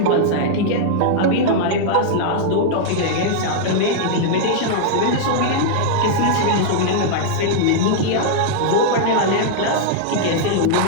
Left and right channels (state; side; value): different; both; correlation -0.01